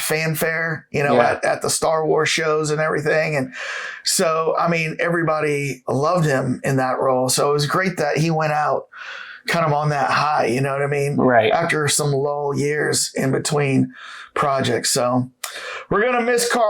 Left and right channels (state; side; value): identical; both; correlation 1.00